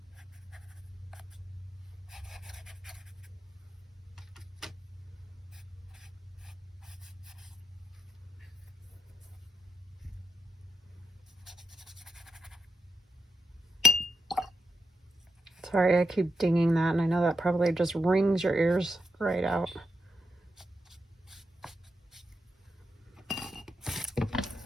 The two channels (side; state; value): both; normal; correlation 0.83